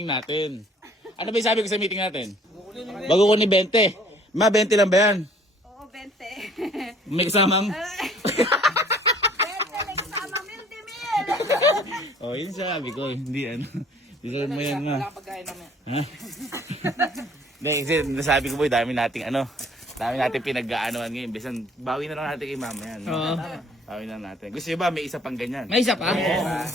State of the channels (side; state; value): both; normal; correlation 0.56